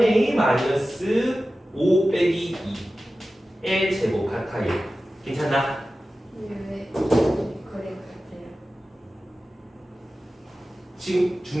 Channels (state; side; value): normal; both; correlation 0.95